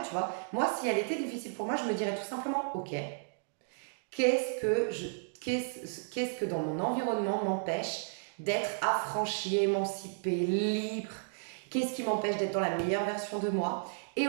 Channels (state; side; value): silent; left; digital silence